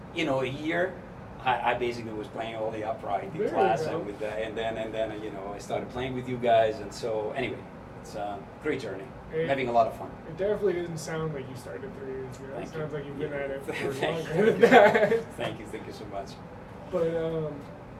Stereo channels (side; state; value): both; identical; correlation 1.00